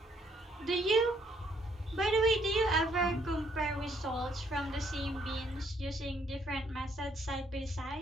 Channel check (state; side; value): normal; both; correlation 0.69